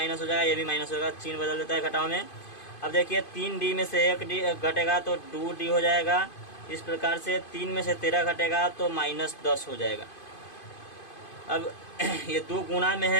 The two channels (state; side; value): late; right; 2.5 ms